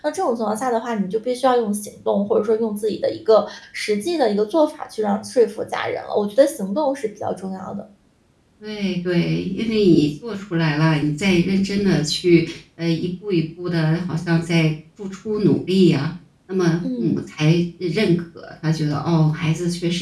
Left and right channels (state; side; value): identical; both; correlation 1.00